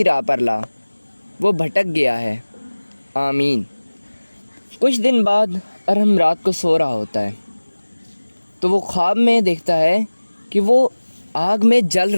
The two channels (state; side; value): inverted; both; correlation -1.00